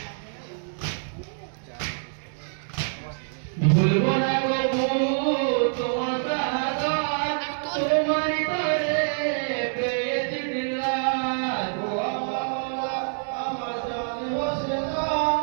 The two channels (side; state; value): left; silent; digital silence